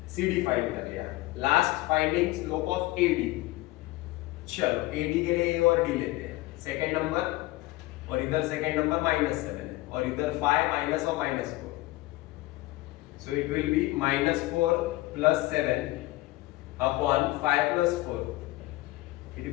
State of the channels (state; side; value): quieter; right; 19.1 dB